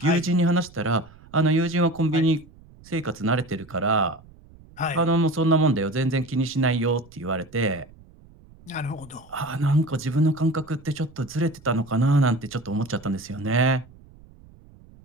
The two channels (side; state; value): right; noise; rumble, 24 dB below the sound